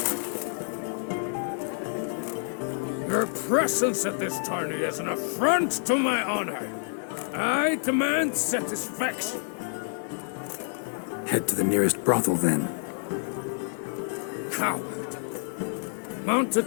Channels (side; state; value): right; silent; 59 dB below the other